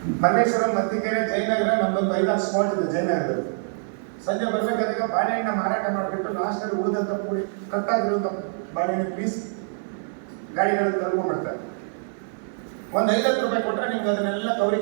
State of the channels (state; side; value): silent; left; 56 dB below the other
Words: ಮಲ್ಲೇಶ್ವರಂ, ಮತ್ತಿಕೆರೆ, ಜಯನಗರ ನಮ್ದೊಂದು 5-6 ಸ್ಪಾಟ್ ಇದೆ ಜಯನಗರದಲ್ಲಿ. ಸಂಜೆ ಬರ್ಬೇಕಾದಾಗ ಬಾಳೆಹಣ್ಣ ಮಾರಾಟ ಮಾಡಿಬಿಟ್ಟು ಲಾಸ್ಟಲ್ಲಿ ಉಳಿದಂತ ಪೂರಿ ಕಟ್ಟಾಗಿರುವಂತ ಬಾಳೆಹಣ್ಣು ಪೀಸ್ ಗಾಡಿಗಳಲ್ಲಿ ತಗೊಂಡ್ಬಿಡ್ತಾರೆ. ಒಂದು 50 ರೂಪಾಯಿ ಕೊಟ್ಟರೆ ನಿಮ್ಗೆ ಅದನ್ನೆಲ್ಲ